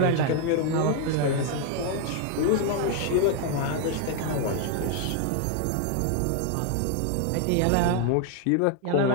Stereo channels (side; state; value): both; different; correlation 0.01